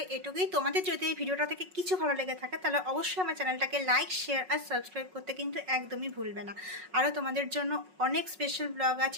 এটুকুই। তোমাদের যদি এই ভিডিওটা থেকে কিছু ভালো লেগে থাকে তাহলে অবশ্যই আমার চ্যানেলটাকে লাইক, শেয়ার আর সাবস্ক্রাইব করতে কিন্তু একদমই ভুলবে না। আরও তোমাদের জন্য অনেক স্পেশাল ব্লগ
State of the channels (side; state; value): left; late; 5.4 ms